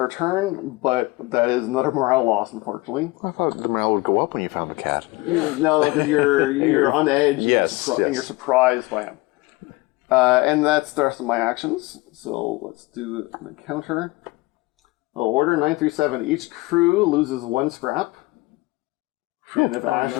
turn, but that is another morale loss, unfortunately. I thought the morale would go up when you found the cat. Yeah. No, because you're on edge. and Yes, and yes. you're surprised by him. And that's the rest of my actions. So let's do an encounter. Order 937. Each crew loses 1 scrap. And if Ash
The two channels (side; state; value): right; quieter; 22.2 dB